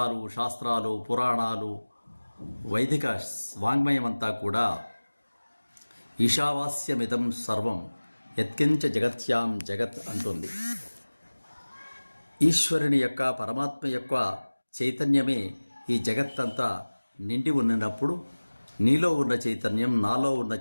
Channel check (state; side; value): inverted; both; correlation -1.00